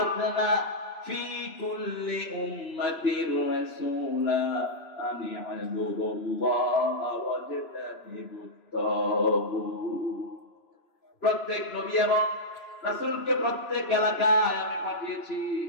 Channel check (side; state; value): right; late; 3.0 ms